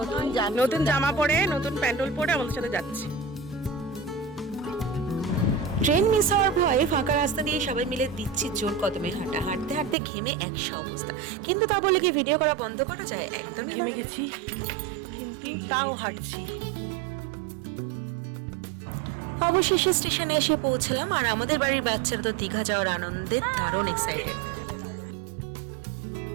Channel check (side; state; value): left; drops out; at 10.0 s